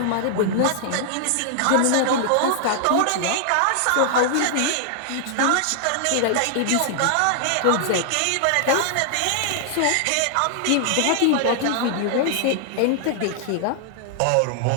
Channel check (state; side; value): different; both; correlation 0.00